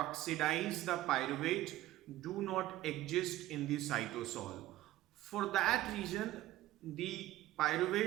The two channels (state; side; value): quieter; left; 15.6 dB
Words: the pyruvate do not exist in the cytosol. For that reason, the